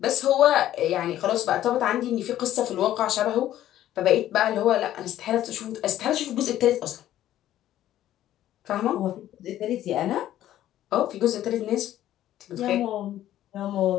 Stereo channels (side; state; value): right; quieter; 12.7 dB